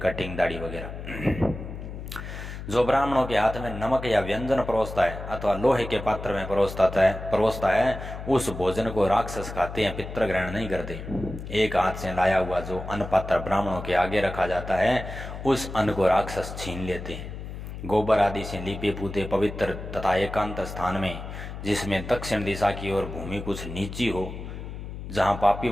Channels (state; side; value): noise; left; hum, 9 dB below the sound